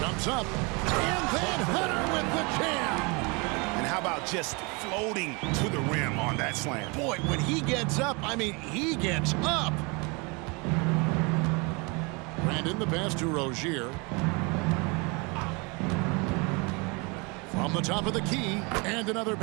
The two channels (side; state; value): left; quieter; 29.3 dB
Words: up. And then Hunter with the jam. And how about just floating to the rim on that slam? Boy, when he gets up, I mean, he gets up. Brandon the pass to Rozier. From the top of the key, and another